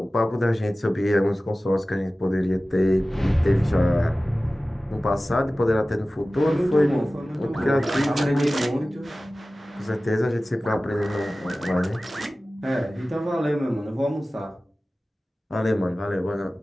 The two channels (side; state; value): both; normal; correlation 0.96